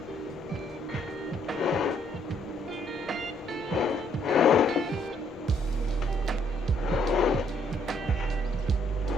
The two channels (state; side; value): normal; both; correlation 0.68